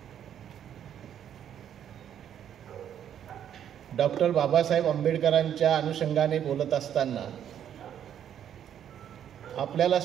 डॉक्टर बाबासाहेब आंबेडकरांच्या अनुषंगाने बोलत असताना आपल्याला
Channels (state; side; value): quieter; left; 9.6 dB